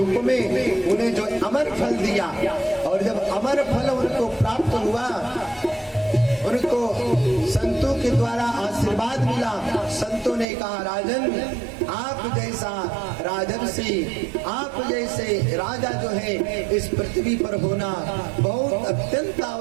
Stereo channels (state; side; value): drops out; left; at 10.5 s